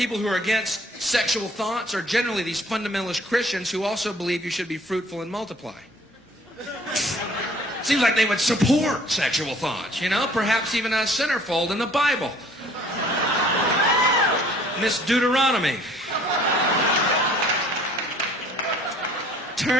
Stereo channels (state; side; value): normal; both; correlation 0.55